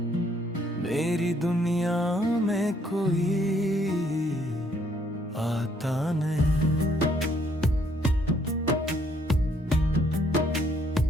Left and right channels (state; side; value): normal; both; correlation 0.67